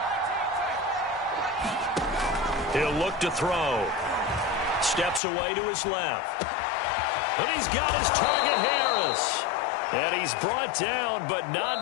He'll look to throw. Steps away to his left. And he's got his target, Harris. And he's brought down, but not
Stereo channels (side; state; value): right; drops out; at 5.2 s